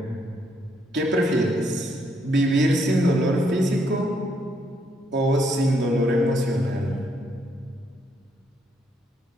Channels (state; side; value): normal; both; correlation 0.73